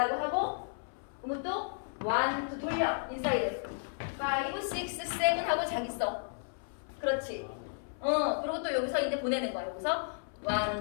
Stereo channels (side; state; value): right; silent; 56 dB below the other